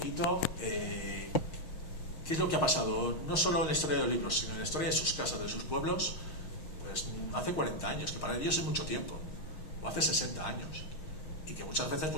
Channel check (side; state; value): right; late; 6.4 ms